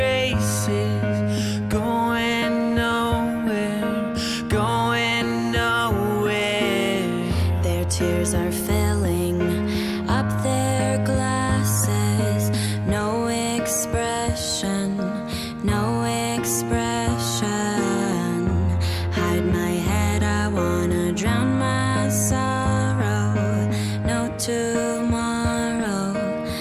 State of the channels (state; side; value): identical; both; correlation 1.00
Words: going nowhere, going nowhere. Their tears are filling up their glasses. No expression, no expression. Hide my head, I wanna drown my sorrow. No tomorrow,